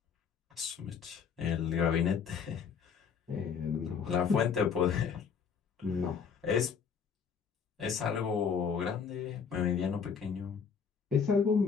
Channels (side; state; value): right; quieter; 6.5 dB